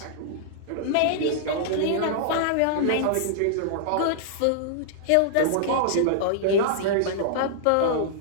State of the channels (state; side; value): different; both; correlation -0.01